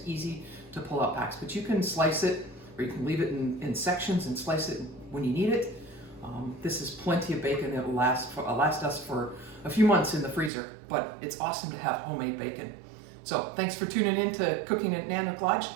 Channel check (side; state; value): left; drops out; at 10.5 s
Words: easy to pull out packs. But you can slice it, or you can leave it in sections and slice it when you need it. This is plenty of bacon that will last us for a few months in the freezer, but it's awesome to have homemade bacon. So thanks for tuning in to Cooking at Nanook Lodge.